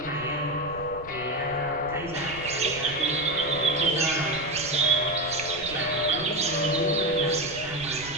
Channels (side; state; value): right; noise; rumble, 17 dB below the sound